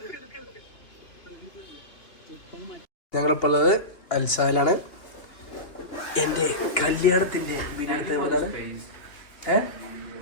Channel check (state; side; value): late; right; 2.9 ms